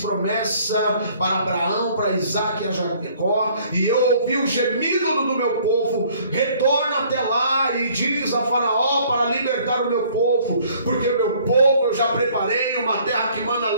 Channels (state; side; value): inverted; both; correlation -0.58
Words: promessa para Abraão, para Isaque e a Jacó, e eu ouvi o gemido do meu povo. Retorna até lá e diz a Faraó para libertar o meu povo, porque o meu povo eu já preparei uma terra que manda